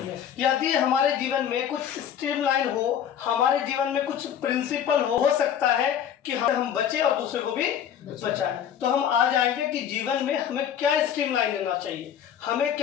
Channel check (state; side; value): quieter; right; 9.2 dB